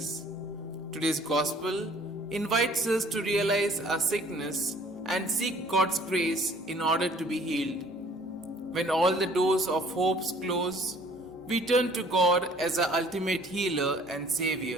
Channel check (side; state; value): both; normal; correlation 0.56